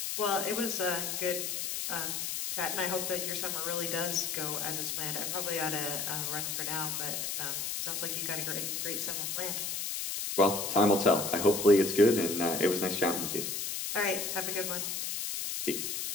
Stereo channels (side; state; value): left; noise; hiss, 3 dB below the sound